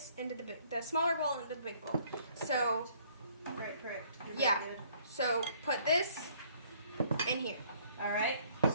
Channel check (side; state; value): both; inverted; correlation -0.61